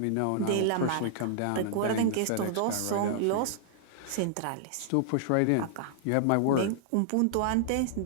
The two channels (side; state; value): both; different; correlation -0.01